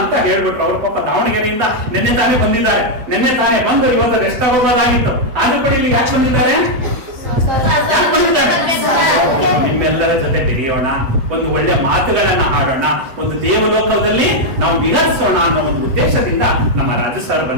ಹೇಳ್ಬಿಟ್ರು. ಅವ್ರ ಪಾಪ ದಾವಣಗೆರೆಯಿಂದ ನಿನ್ನೆ ತಾನೇ ಬಂದಿದ್ದಾರೆ. ನಿನ್ನೆ ತಾನೇ ಬಂದು ಇವತ್ತು ರೆಸ್ಟ್ ಆಗೋದಾಗಿತ್ತು. ಆದ್ರೂ ಕೂಡ ಇಲ್ಲಿ ಯಾಕೆ ಬಂದಿದ್ದಾರೆ? ಯಾಕೆ ಬಂದಿದ್ದಾರೆ? ನಿಮ್ಮೆಲ್ಲರ ಜೊತೆ ಬೆರೆಯೋಣ, ಒಂದು ಒಳ್ಳೆ ಮಾತುಗಳನ್ನ ಆಡೋಣ, ಒಂದು ದೇವಲೋಕದಲ್ಲಿ ನಾವು ವಿಹರಿಸೋಣ ಅನ್ನೋ ಒಂದು ಉದ್ದೇಶದಿಂದ ನಮ್ಮ ರಾಜು ಸರ್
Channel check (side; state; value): left; late; 8.2 ms